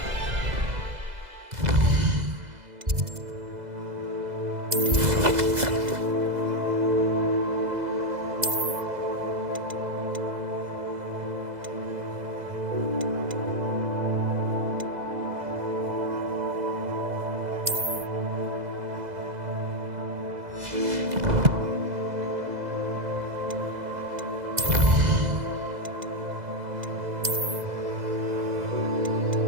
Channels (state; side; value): late; left; 2.0 ms